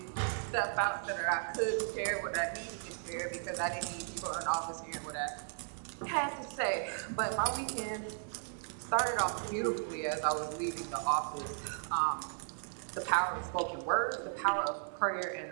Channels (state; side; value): silent; left; digital silence